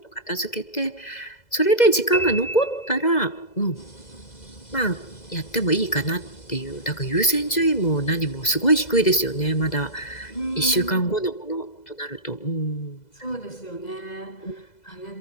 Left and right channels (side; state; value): right; late; 2.0 ms